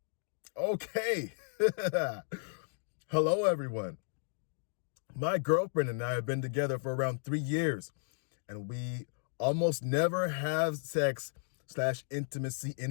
Okay. Hello, everyone. My girlfriend and I have been together for around 3 years, and we almost never have sex/intimacy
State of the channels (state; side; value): silent; right; digital silence